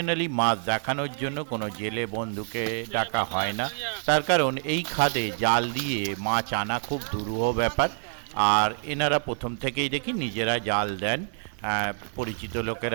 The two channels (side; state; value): left; silent; digital silence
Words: মাছ দেখানোর জন্য কোনো জেলে বন্ধুকে ডাকা হয় না, তার কারণ এই খাদে জাল দিয়ে মাছ আনা খুব দুরূহ ব্যাপার। আর এনারা প্রথম থেকেই দেখি নিজেরা জাল দেন, পরিচিত